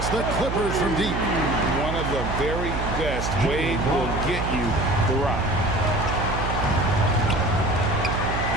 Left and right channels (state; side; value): noise; right; hum, 3 dB below the sound